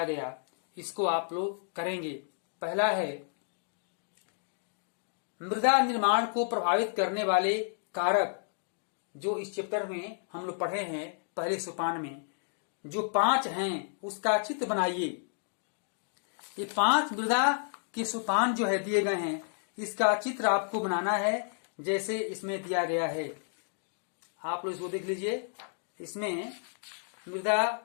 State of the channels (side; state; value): right; silent; digital silence